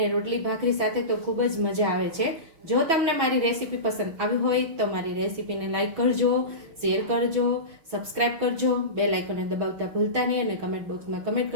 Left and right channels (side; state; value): left; late; 6.3 ms